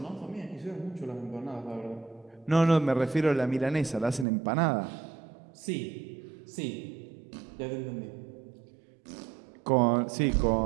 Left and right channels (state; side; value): drops out; left; at 4.2 s